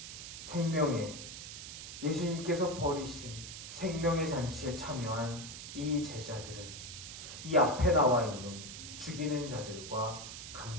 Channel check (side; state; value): right; noise; hiss, 10 dB below the sound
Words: 생명의, 예수님께서 버리신 생명의 잔치에 참여한 이 제자들은 이 앞에 나와 있는 죽이는 자들과